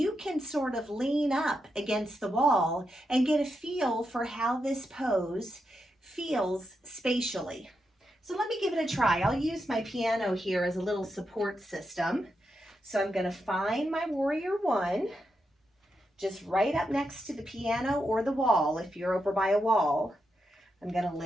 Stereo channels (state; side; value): normal; both; correlation 0.85